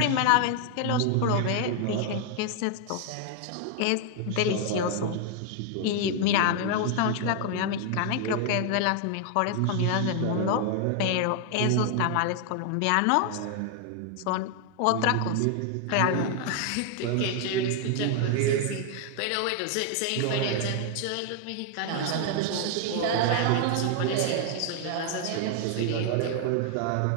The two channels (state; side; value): different; both; correlation 0.00